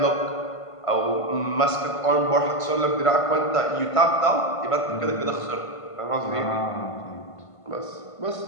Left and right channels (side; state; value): right; late; 1.5 ms